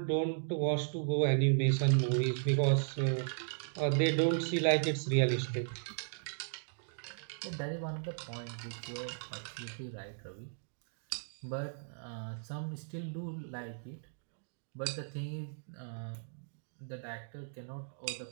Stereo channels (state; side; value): silent; left; digital silence